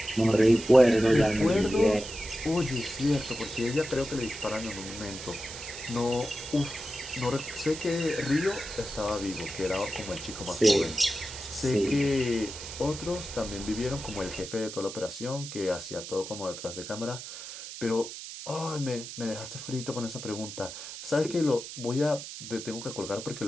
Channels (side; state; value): right; noise; hiss, 11 dB below the sound